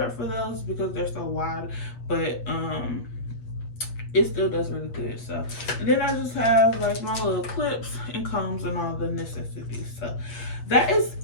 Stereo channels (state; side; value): late; right; 8.5 ms